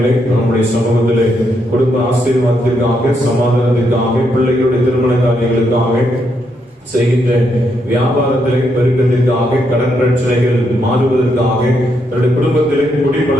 நம்முடைய சமூகத்திலே குடும்ப ஆசீர்வாதத்திற்காக, சமாதானத்திற்காக, பிள்ளைகளுடைய திருமண காரியங்களுக்காக, செய்கின்ற வியாபாரத்திலே பெருக்கத்திற்காக, கடன் பிரச்சனைகள் மாறுவதற்காக, தன்னுடைய குடும்பத்திலே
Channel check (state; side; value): normal; both; correlation 0.78